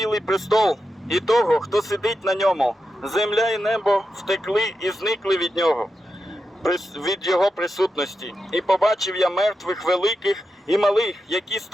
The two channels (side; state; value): both; normal; correlation 0.88